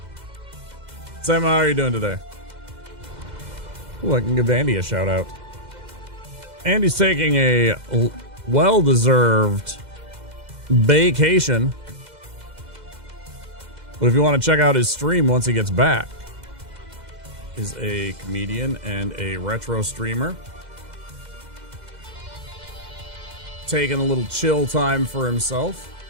Sam, how are you doing today? Ooh, I can give Andy a shout out. Andy's taking a well-deserved vacation. But if you want to check out his stream once he gets back, is a comedian and a retro streamer. Taking a little chill time for himself.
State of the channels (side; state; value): left; late; 2.0 ms